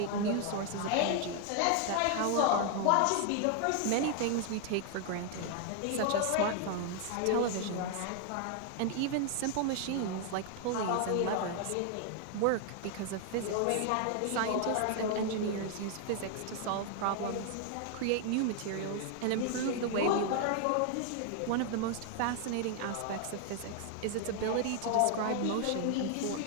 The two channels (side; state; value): both; different; correlation 0.00